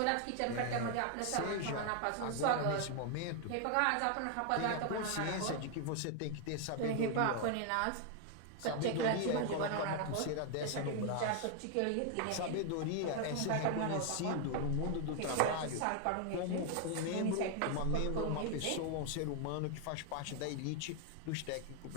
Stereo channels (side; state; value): both; different; correlation 0.00